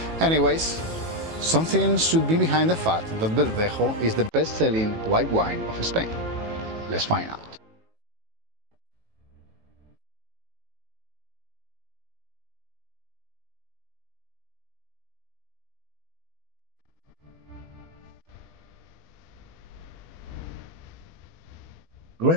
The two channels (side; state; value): left; late; 18 ms